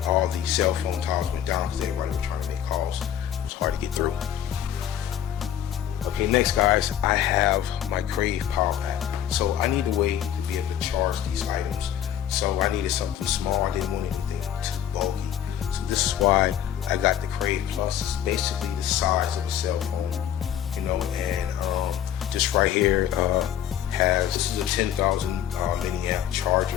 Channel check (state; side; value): quieter; right; 10.2 dB